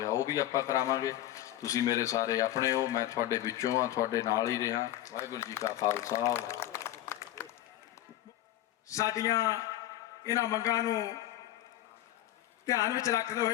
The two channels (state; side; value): quieter; right; 13.7 dB